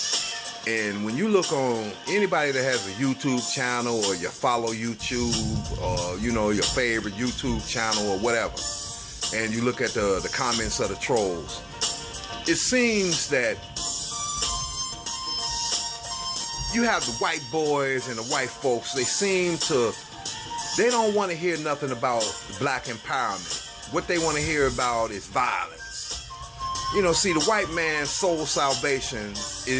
And when you look on anybody that has a YouTube channel, or you follow YouTube, or your favorite YouTube channel or whatever, and you look at the comments of the trolls, it seems that you have the white boys and the white folks, they don't want to hear nothing about black empowerment. What they want to hear about is violence. See, the white man's soul salvation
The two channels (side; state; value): both; identical; correlation 1.00